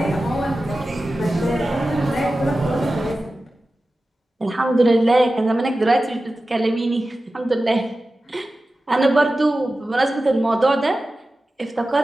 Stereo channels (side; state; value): both; normal; correlation 0.95